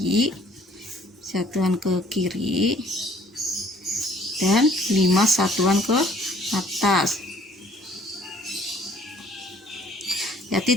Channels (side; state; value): both; normal; correlation 0.58